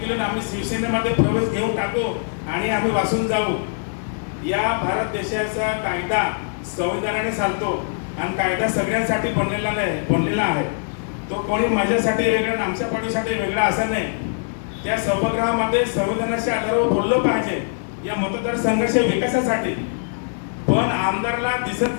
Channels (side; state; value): right; silent; digital silence